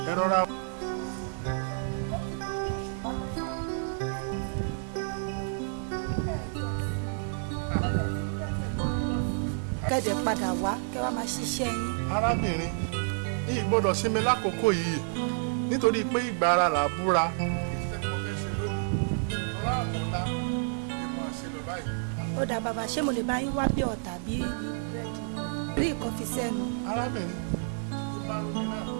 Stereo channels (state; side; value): silent; left; digital silence